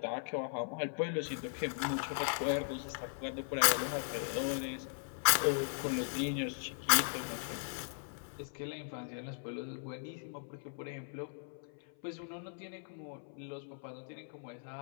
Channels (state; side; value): silent; right; 52 dB below the other